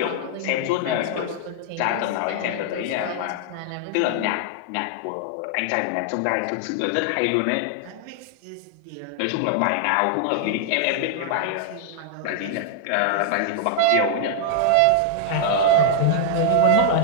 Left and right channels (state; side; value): different; both; correlation -0.01